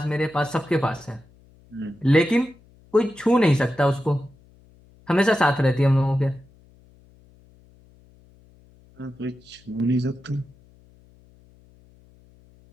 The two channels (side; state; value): left; noise; hum, 28 dB below the sound